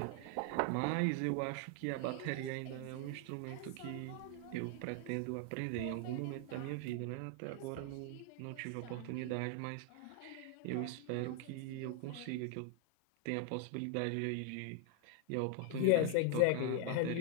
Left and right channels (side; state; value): both; different; correlation 0.00